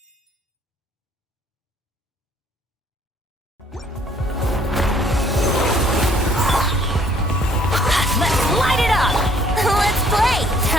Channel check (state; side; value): normal; both; correlation 0.61